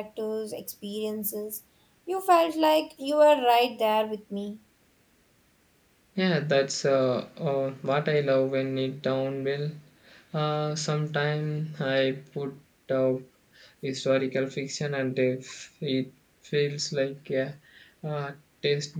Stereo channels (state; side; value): identical; both; correlation 1.00